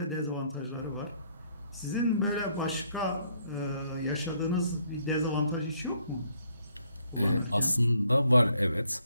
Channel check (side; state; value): both; inverted; correlation -0.69